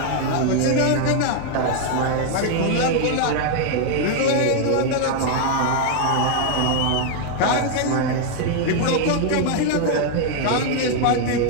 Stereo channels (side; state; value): both; different; correlation 0.00